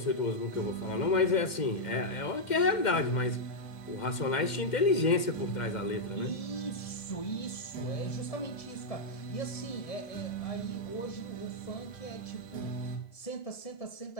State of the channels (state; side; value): late; right; 2.1 ms